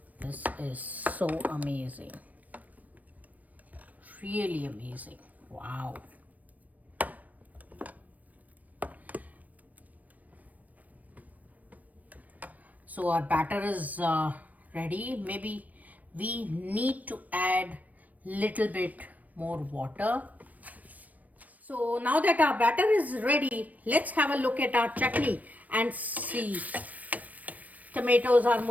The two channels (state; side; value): late; left; 0.075 ms